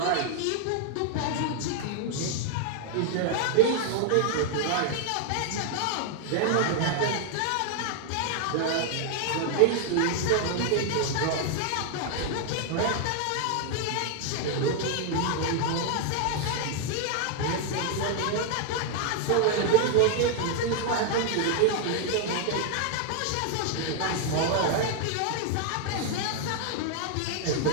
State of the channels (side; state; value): both; different; correlation 0.00